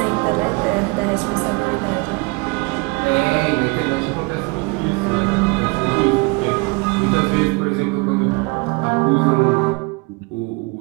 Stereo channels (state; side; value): quieter; left; 27.2 dB